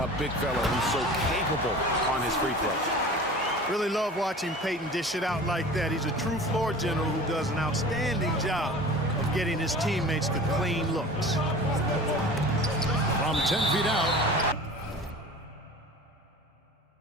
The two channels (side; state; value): both; normal; correlation 0.39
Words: a big fella who's so capable on his free throws. Really love watching Peyton dish it out like that. He's a true floor general who does an outstanding job of getting his teammates to clean looks. From 10 feet out.